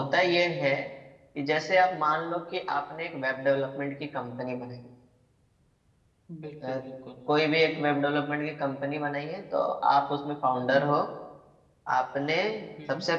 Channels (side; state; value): both; identical; correlation 1.00